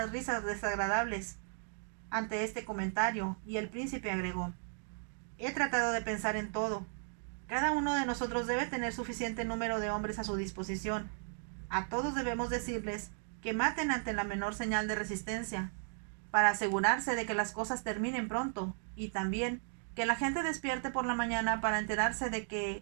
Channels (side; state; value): left; silent; 54 dB below the other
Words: risas desagradables ante este comentario, y el príncipe agregó: he tratado de pensar en todo. Cada uno de nosotros debe tener suficiente número de hombres a su disposición. A todos debemos decirles que maten ante la menor señal de resistencia, para asegurarse de que las cosas terminen pronto, y también que la gente despierte por la mañana para enterarse de que